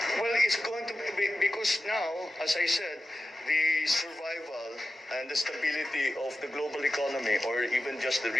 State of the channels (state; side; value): normal; both; correlation 0.93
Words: Well, it's going to be, because now, as I said, the survival and the stability of the global economy, or even just the